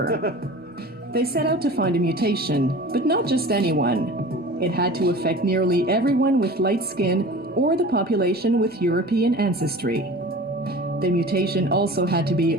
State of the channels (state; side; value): normal; both; correlation 0.39